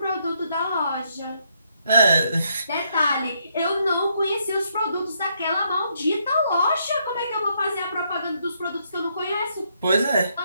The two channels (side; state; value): both; inverted; correlation -0.74